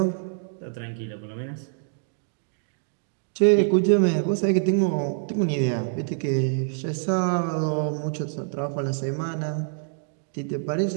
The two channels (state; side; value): silent; left; digital silence